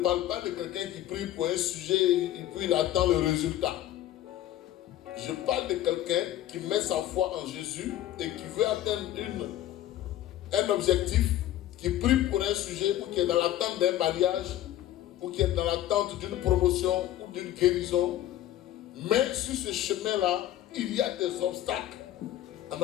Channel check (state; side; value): quieter; right; 13.2 dB